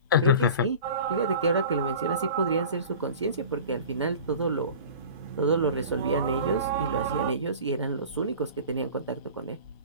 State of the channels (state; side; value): inverted; both; correlation -0.39